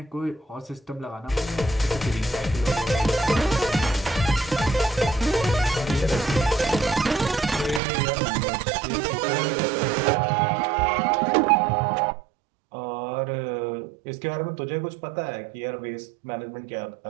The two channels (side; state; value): left; drops out; at 7.8 s